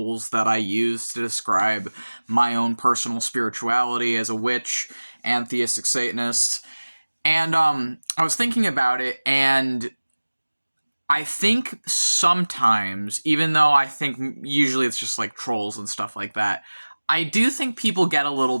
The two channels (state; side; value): inverted; both; correlation -1.00